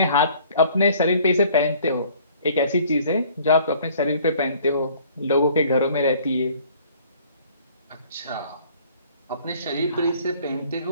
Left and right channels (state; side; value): inverted; both; correlation -0.55